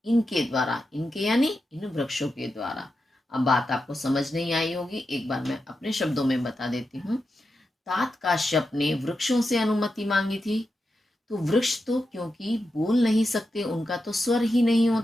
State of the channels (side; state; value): both; normal; correlation 0.89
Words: इनके द्वारा, इनके यानी इन वृक्षों के द्वारा। अब बात आपको समझ नहीं आई होगी, एक बार मैं अपने शब्दों में बता देती हूँ। तात काश्यप ने वृक्षों से अनुमति मांगी थी, तो वृक्ष तो क्योंकि बोल नहीं सकते, उनका तो स्वर ही नहीं